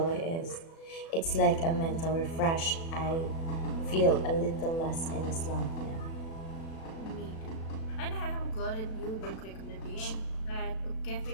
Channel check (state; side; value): late; right; 36 ms